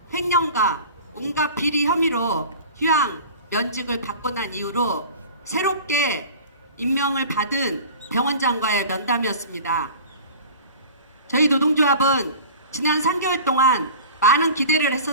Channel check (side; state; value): both; inverted; correlation -0.39